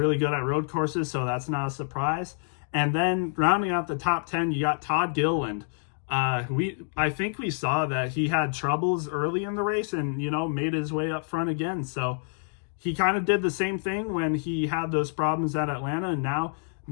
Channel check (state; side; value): silent; right; digital silence